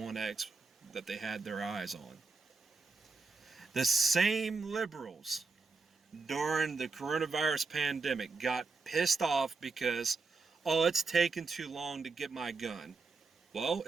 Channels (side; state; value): left; quieter; 4.2 dB